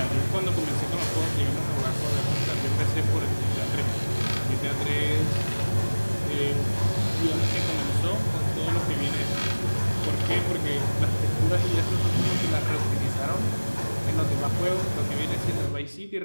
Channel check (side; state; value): both; inverted; correlation -1.00